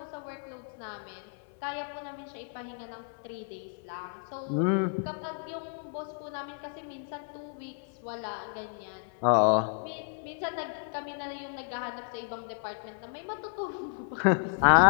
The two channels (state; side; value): silent; right; 56 dB below the other